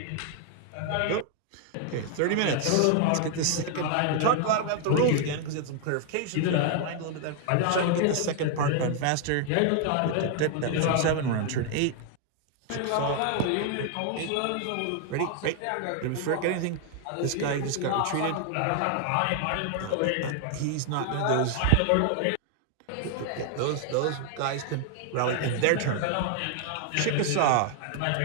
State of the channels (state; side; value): different; both; correlation 0.00